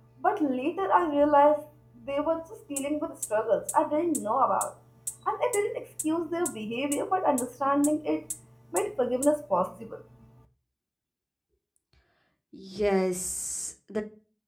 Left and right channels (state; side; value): identical; both; correlation 1.00